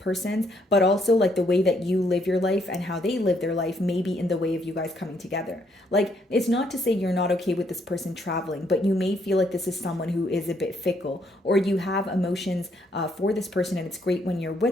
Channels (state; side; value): normal; both; correlation 0.71